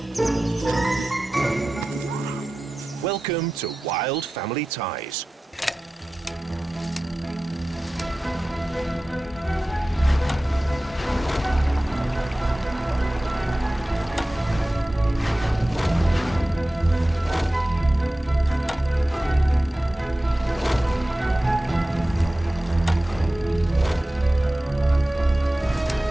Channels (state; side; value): normal; both; correlation 0.95